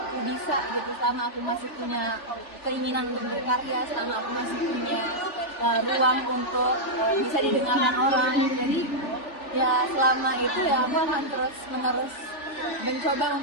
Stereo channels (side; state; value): right; late; 3.4 ms